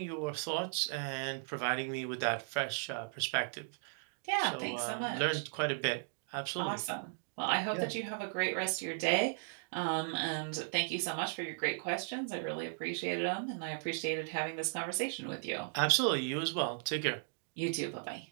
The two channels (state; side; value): silent; left; digital silence